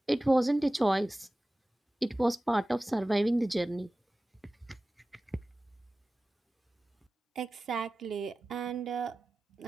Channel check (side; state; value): both; normal; correlation 0.96